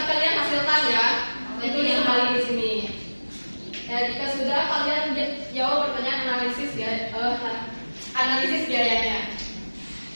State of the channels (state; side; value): inverted; both; correlation -1.00